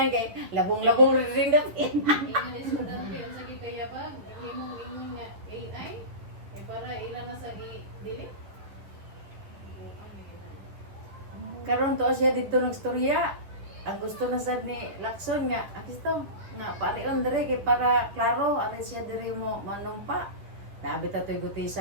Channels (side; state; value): left; late; 10 ms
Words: kay labong-labong ring dap. Ingon estudyante, ang sakit kaya ba? imong ingon niya AI para ilan na sa i-delete. Karon to siya dito nagstorya. Ang gusto na sad ni Lacson nga, akisto na parion dire kay para klaro ari siya dire mo manumpa. Nabi ta toy